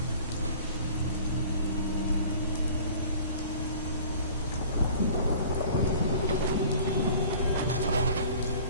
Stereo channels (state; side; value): inverted; both; correlation -0.46